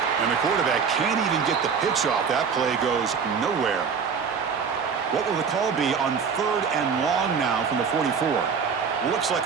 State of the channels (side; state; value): left; quieter; 6.2 dB